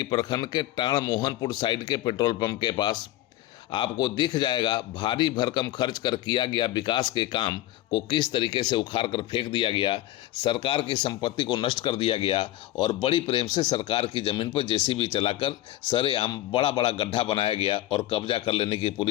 प्रखंड के टाण मोहनपुर साइड के पेट्रोल पंप के पास। आपको दिख जाएगा भारी भरकम खर्च कर किया गया विकास के काम को किस तरीके से उखाड़ कर फेंक दिया गया, सरकार की संपत्ति को नष्ट कर दिया गया और बड़ी प्रेम से सरकार की जमीन पर जेसीबी चलाकर सरेआम बड़ा बड़ा गड्ढा बनाया गया और कब्जा कर लेने की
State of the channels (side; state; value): right; quieter; 15.0 dB